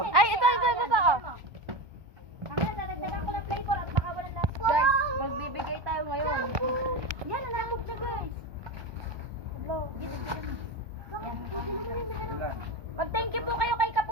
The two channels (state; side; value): late; left; 1.2 ms